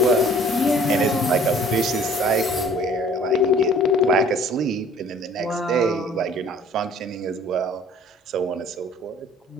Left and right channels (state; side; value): normal; both; correlation 0.53